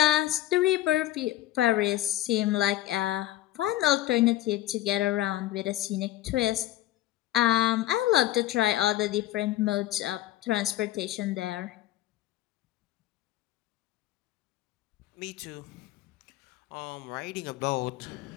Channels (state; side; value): quieter; right; 14.8 dB